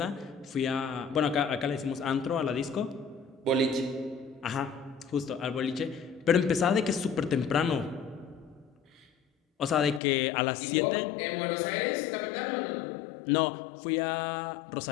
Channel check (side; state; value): right; drops out; at 10.0 s